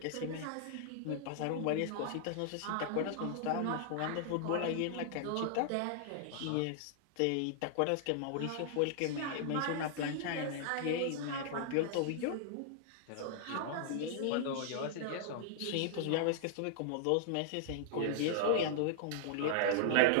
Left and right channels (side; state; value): both; different; correlation -0.01